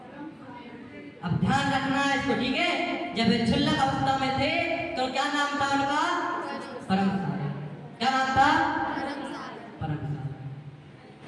अब ध्यान रखना है इसको, ठीक है? जब वे क्षुल्लक अवस्था में थे तो क्या नाम था उनका? परम सागर। क्या नाम था? परम सागर,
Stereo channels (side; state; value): both; identical; correlation 1.00